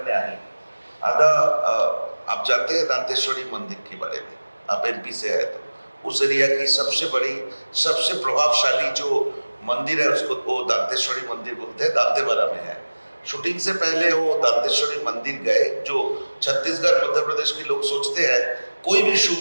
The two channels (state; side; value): inverted; both; correlation -1.00